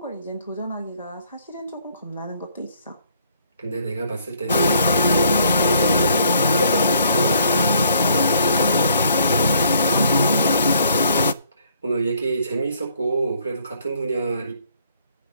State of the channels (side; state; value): both; inverted; correlation -0.65